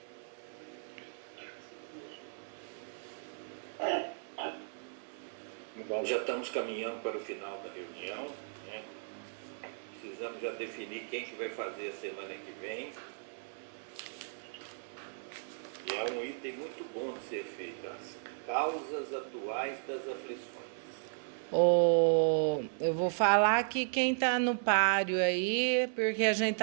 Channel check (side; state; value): left; silent; 54 dB below the other